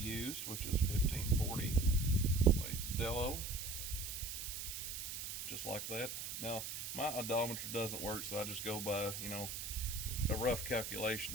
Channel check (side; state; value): right; noise; hiss, 6 dB below the sound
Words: which is 1540 Dello, just like that. Now my odometer doesn't work, so I just go by, a rough